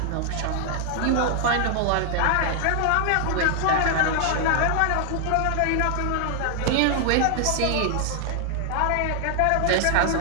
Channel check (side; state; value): both; different; correlation 0.00